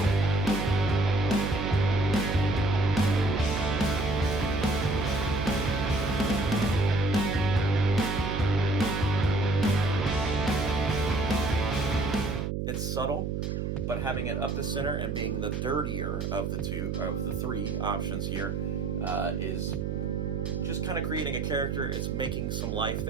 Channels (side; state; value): right; noise; hum, 2 dB below the sound